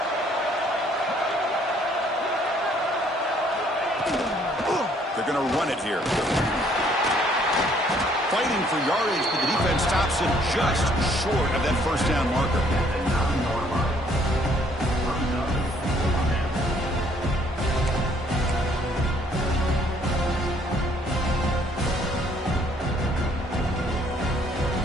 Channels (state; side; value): normal; both; correlation 0.63